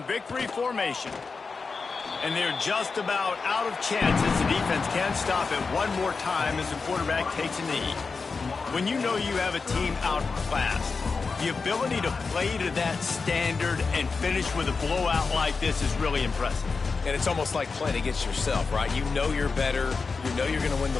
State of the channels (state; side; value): quieter; right; 4.6 dB